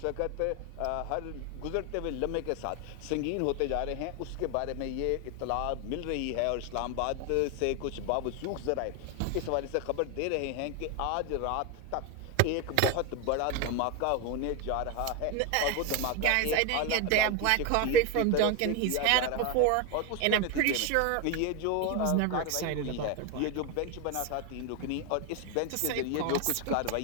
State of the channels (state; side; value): different; both; correlation 0.01